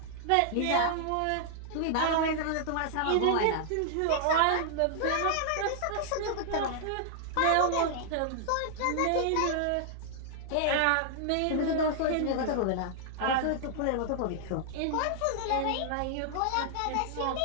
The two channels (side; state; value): both; different; correlation -0.01